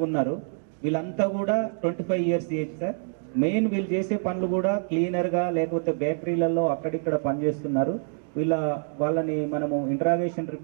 ఉన్నారు. వీళ్ళంతా కూడా 25 ఇయర్స్ ఏజ్ సార్. మెయిన్ వీళ్ళు చేసే పనులు కూడా క్లీనర్గా లేకపోతే బేకరీలలో అక్కడిక్కడ పనిచేస్తున్నారు. వాళ్ళని మనము ఇంటరాగేషన్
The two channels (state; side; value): silent; left; 56 dB below the other